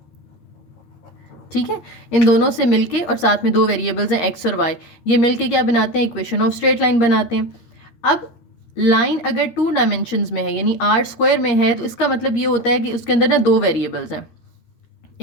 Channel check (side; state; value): right; late; 13 ms